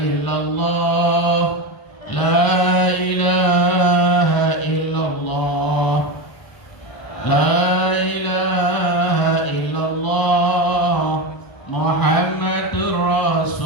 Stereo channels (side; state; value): right; late; 1.0 ms